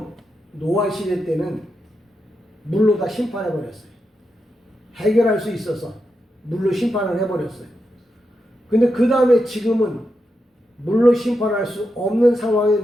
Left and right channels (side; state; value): both; normal; correlation 0.86